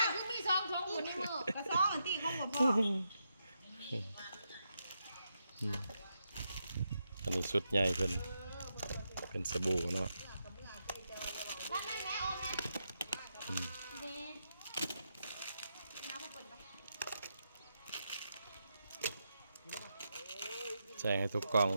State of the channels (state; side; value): inverted; both; correlation -0.84